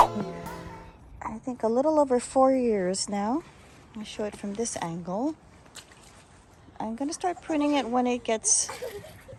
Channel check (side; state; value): both; identical; correlation 1.00